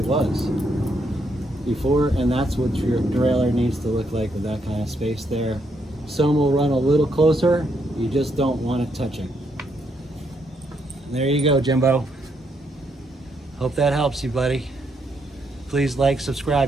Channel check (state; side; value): normal; both; correlation 0.76